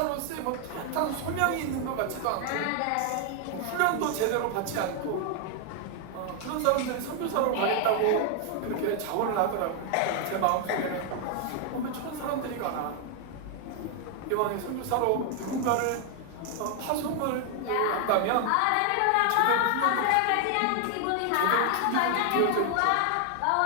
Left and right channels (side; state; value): both; different; correlation 0.00